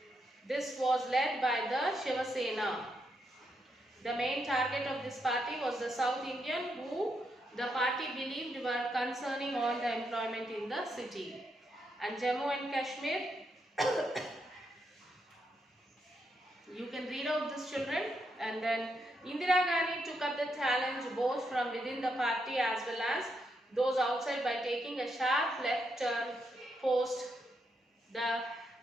This was led by the Shiva Sena. The main target of this party was the South Indian, who the party believed were concerning all the employment in the city. And Jammu and Kashmir, you can read out this, children. And then Indira Gandhi took up the challenge both from within the party as well as those outside by taking a sharp left turn post the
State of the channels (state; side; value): normal; both; correlation 0.81